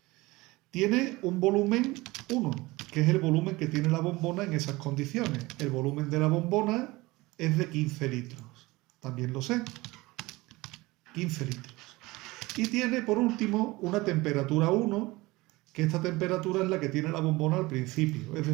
Tiene un volumen 1, que es el volumen que tiene la bombona en esas condiciones. El volumen de la bombona es de 15 litros. También lo sé. 15 litros. Y tiene, por último, una temperatura 1, que esta temperatura es la que tiene la bombona al principio. Es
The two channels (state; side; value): quieter; left; 21.2 dB